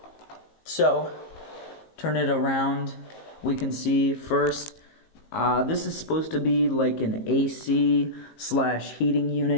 So, turn it around. We can see first, this is supposed to be like an AC/heating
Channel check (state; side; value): late; right; 19 ms